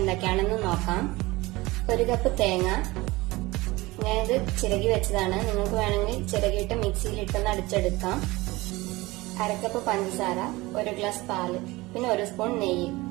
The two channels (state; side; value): quieter; left; 21.0 dB